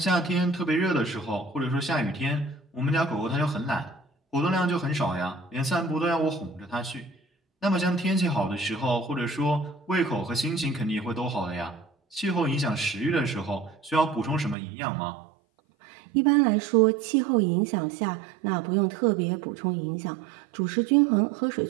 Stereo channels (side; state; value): left; drops out; at 14.6 s